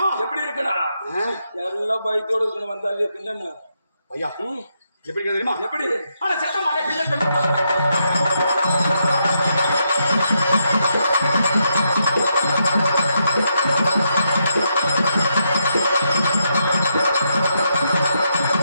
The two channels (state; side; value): inverted; both; correlation -0.80